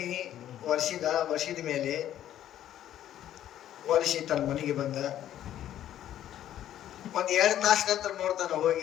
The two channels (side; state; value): right; quieter; 11.7 dB